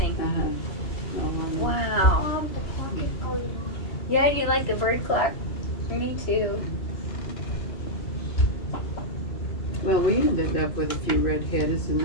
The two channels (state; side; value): late; right; 3.0 ms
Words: No one. Wow. Yeah, do you like the bird clock? Me too. Well, we ended up with a few redheads,